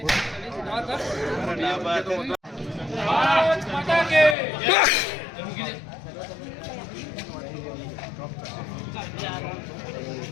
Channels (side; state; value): right; drops out; at 4.4 s